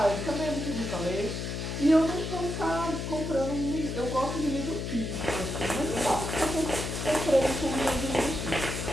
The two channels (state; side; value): noise; left; hum, 4 dB below the sound